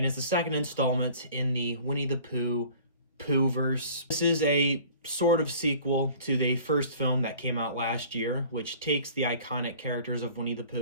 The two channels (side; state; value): both; inverted; correlation -0.47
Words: is the second installment in the Winnie the Pooh Pooh-verse. This is a sort of sequel to the first film that came out last year, which takes the iconic characters of Winnie the